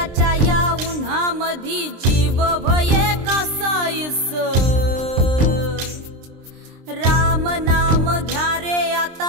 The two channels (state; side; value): late; left; 23 ms